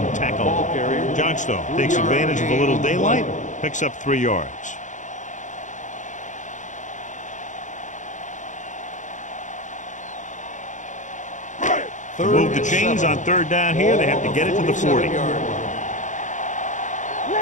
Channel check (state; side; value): late; right; 0.36 ms